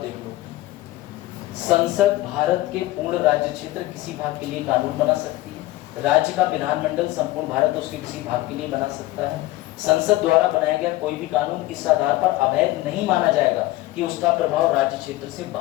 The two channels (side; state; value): right; quieter; 17.7 dB